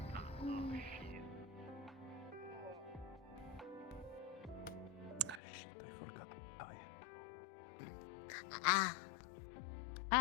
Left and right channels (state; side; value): drops out; right; at 5.4 s